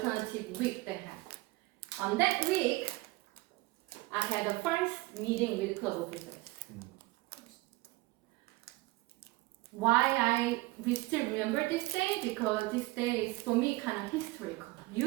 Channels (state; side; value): quieter; left; 21.3 dB